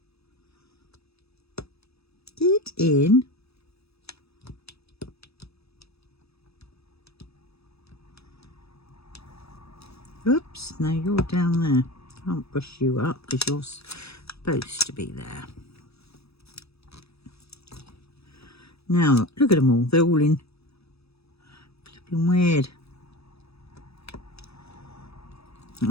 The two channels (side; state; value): right; late; 0.78 ms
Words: Get in. Oops, no, you're down there. Can't push you up because you're supposed to be there. Now, look at them all. They're all in flipping weird.